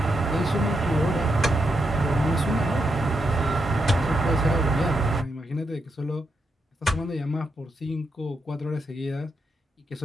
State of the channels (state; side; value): normal; both; correlation 0.82